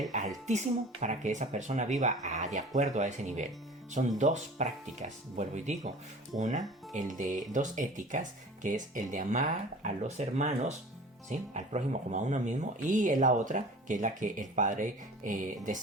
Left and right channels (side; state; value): both; normal; correlation 0.42